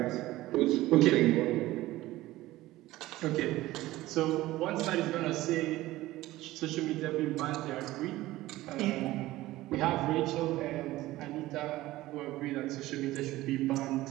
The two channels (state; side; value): quieter; left; 17.0 dB